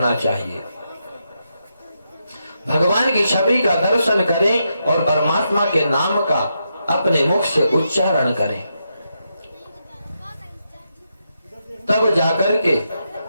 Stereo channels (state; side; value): inverted; both; correlation -0.83